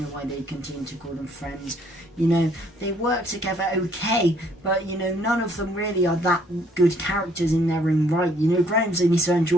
why they continue to call them friends, you know, they work together okay, but you know, none of them really are that good characters in their own right. You know, Graham's only so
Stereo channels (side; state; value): both; normal; correlation 0.64